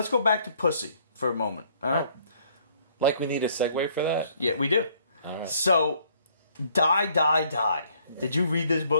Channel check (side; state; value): both; inverted; correlation -0.63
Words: go back to Pussy for a moment, alright? Like we need a segue for that? Yeah, we do. Alright. So, Die, Die, Die. Did you read this